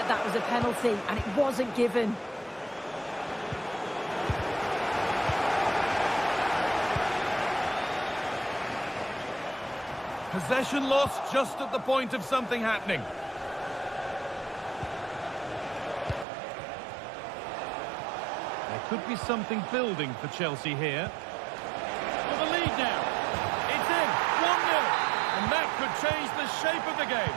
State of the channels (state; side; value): drops out; left; at 16.2 s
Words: that was a penalty, and it wasn't given. Possession lost just at the point of something happening. There could be something building for Chelsea here. For the lead now. It's in. 1-0. And that could change the shape of the